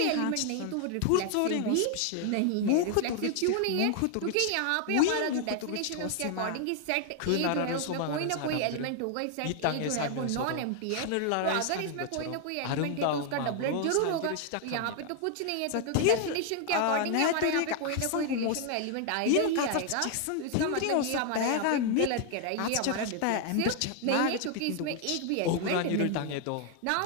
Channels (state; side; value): different; both; correlation 0.00